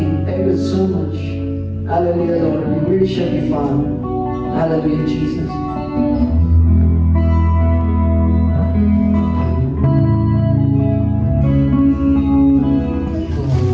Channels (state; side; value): identical; both; correlation 1.00